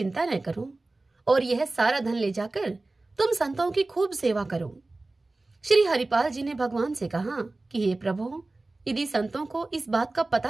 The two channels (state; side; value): quieter; left; 3.1 dB